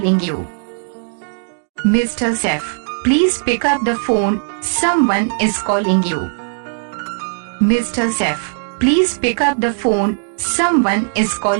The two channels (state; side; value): silent; left; digital silence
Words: you. Mr. Saif, please pick up the phone, someone is calling you. Mr. Saif, please pick up the phone, someone is